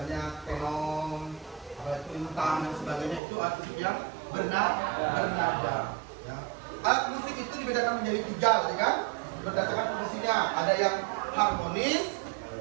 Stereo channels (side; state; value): left; drops out; at 3.2 s